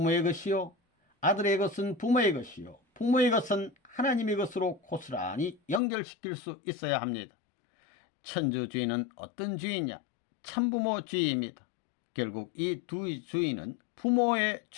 것이요 아들의 것은 부모의 것이요 부모의 것은 하나님의 것으로 고스란히 연결시킬 수 있어야 합니다. 천주주의는 어떤 주의냐? 참부모주의입니다. 결국 이 두 주의는 부모의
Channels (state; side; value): drops out; right; at 5.8 s